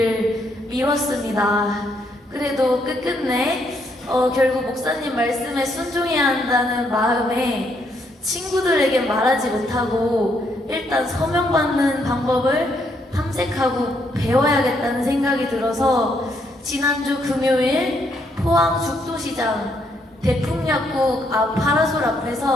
미뤘습니다. 그래도 끝끝내 결국 목사님 말씀에 순종해야 한다는 마음에 친구들에게 말하지 못하고 일단 서명 받는 방법을 탐색하고 배워야겠다는 생각이 들어서 지난주 금요일 포항 죽도시장 대풍약국 앞 파라솔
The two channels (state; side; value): normal; both; correlation 0.73